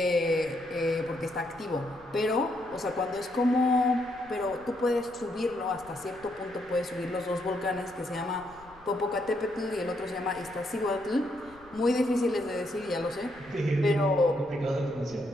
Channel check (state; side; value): noise; left; rumble, 25 dB below the sound